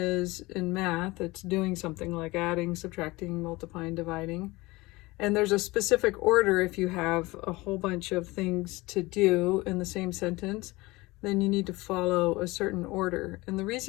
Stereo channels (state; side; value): quieter; right; 21.7 dB